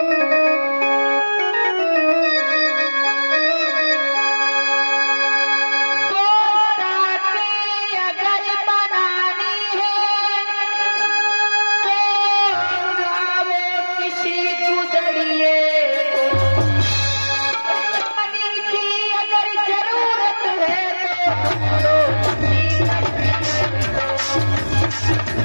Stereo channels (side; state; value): both; inverted; correlation -1.00